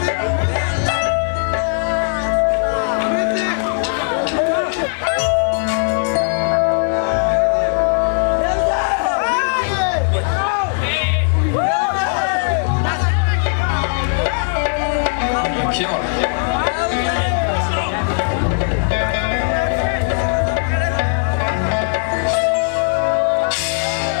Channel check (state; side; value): silent; right; digital silence